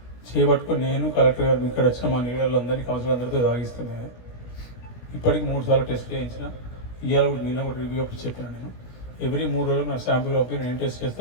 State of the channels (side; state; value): right; late; 17 ms